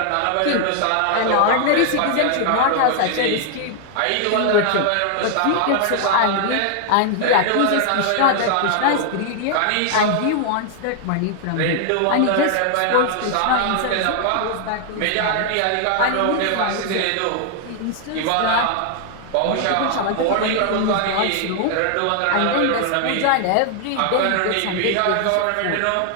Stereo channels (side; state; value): both; different; correlation 0.00